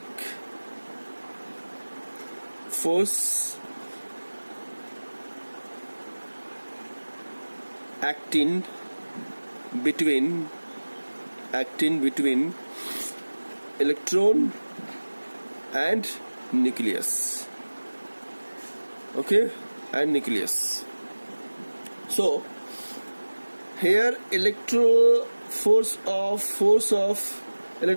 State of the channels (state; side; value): inverted; both; correlation -1.00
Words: force acting between electron and nucleus. Okay, and nucleus. So here